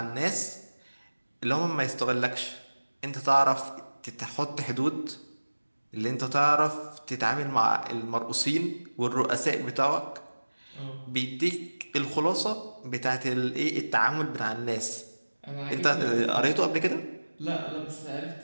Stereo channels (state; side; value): inverted; both; correlation -1.00